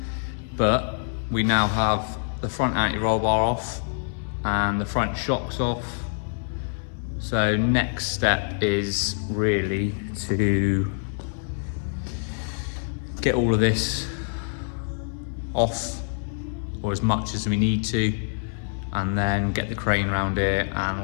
but we now have the front anti-roll bar off and the front shocks off. So next step is really to get all of this off, or as much as we need to, and then get the crane around here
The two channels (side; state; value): right; silent; 61 dB below the other